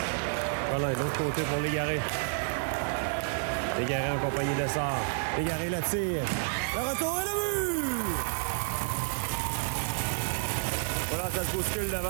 Voilà, de l'autre côté pour Légaré. Légaré en compagnie de Sard. Légaré le tire. Le retour et le but! Voilà, ça se bouscule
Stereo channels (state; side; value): silent; left; 58 dB below the other